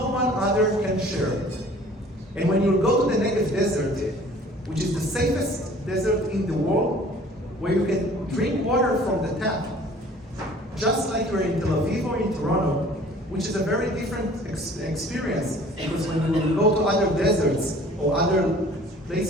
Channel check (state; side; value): normal; both; correlation 0.50